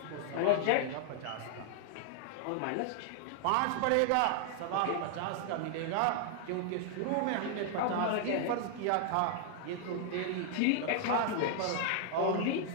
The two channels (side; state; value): both; different; correlation -0.01